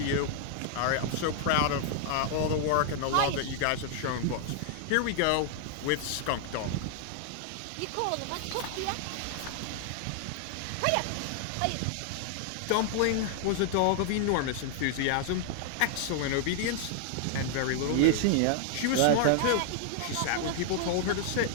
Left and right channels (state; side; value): different; both; correlation 0.00